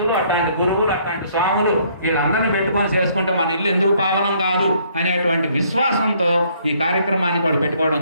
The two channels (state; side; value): inverted; both; correlation -0.64